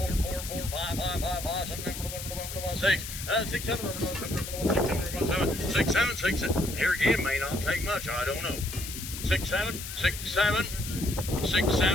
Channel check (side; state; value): left; noise; hiss, 8 dB below the sound